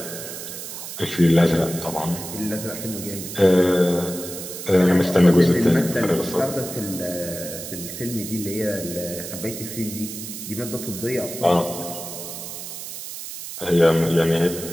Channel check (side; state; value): right; noise; hiss, 9 dB below the sound